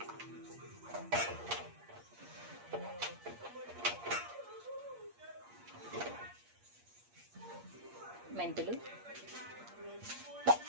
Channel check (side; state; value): left; late; 8.5 ms